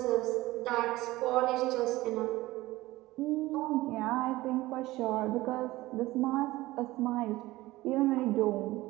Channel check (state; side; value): quieter; left; 18.3 dB